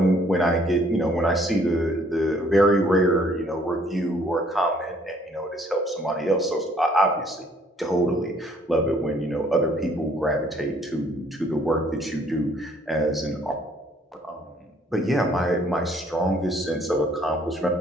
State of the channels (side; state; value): both; normal; correlation 0.62